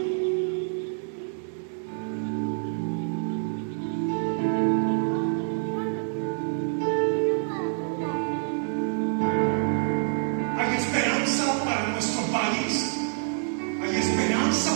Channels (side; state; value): left; silent; digital silence